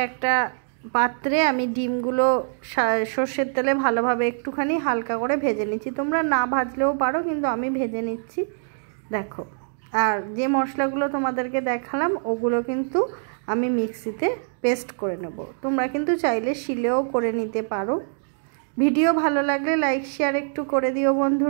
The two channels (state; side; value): silent; left; digital silence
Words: একটা পাত্রে আমি ডিমগুলো সর্ষের তেলে ভালোভাবে একটুখানি হালকা করে ভেজে নিচ্ছি। তোমরা না ভাজলেও পারো, কিন্তু আমি ভেজে নিচ্ছি। দেখো, আর যে মশলাগুলো তোমাদেরকে দেখালাম ওগুলো কিন্তু আমি মিক্সিতে পেস্ট করে নেব। তোমরা কিন্তু চাইলে শিলেও করে নিতে পারো। ভিডিও ভালো লাগলে লাইক শেয়ার একটু করে দিও